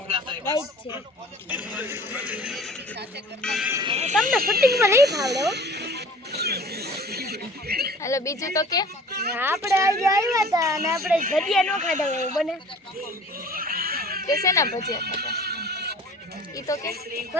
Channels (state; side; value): normal; both; correlation 0.46